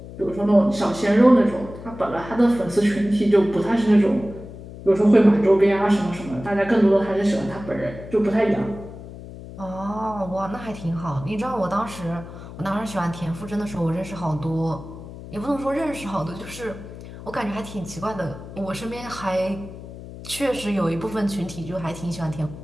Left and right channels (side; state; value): left; noise; hum, 14 dB below the sound